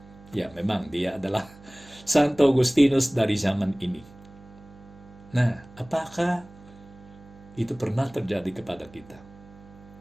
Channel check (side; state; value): right; noise; hum, 22 dB below the sound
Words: Ya, memang dia adalah Santo Agustinus dari zaman ini. Nah, apakah itu pernah terjadi kepada kita?